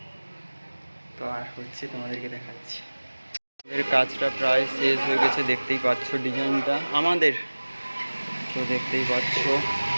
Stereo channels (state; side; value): inverted; both; correlation -1.00